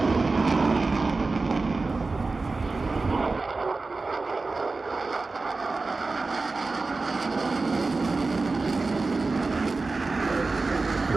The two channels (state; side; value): quieter; left; 3.7 dB